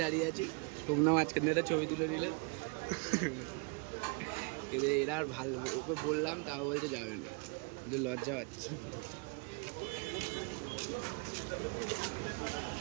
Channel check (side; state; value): left; quieter; 33.6 dB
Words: দাঁড়িয়ে আছে, সোমনা মাঝখানে একটা ছবি তুলে নিল। এরা আর ভালো, ওকে বললাম তাও বলছে যাবে না, লজ্জা পাচ্ছে।